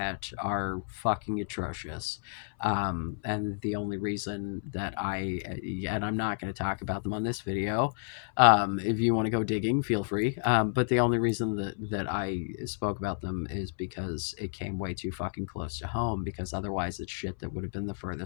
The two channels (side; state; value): right; silent; 57 dB below the other